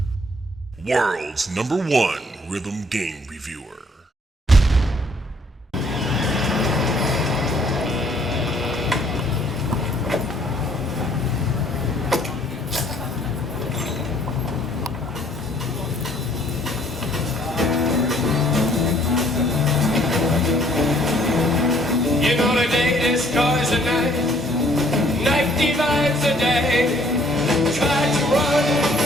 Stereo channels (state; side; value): normal; both; correlation 0.62